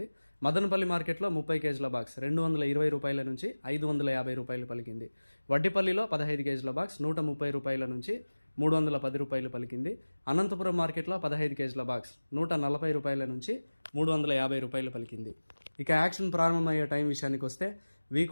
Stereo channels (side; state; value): both; inverted; correlation -1.00